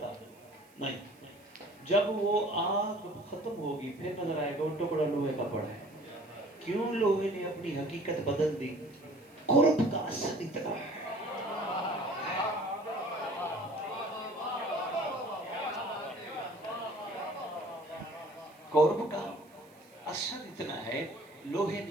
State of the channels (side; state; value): right; noise; hiss, 29 dB below the sound